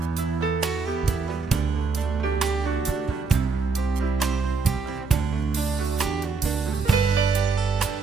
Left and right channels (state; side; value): quieter; left; 4.5 dB